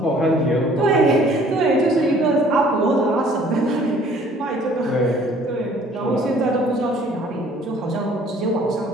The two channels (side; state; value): both; normal; correlation 0.56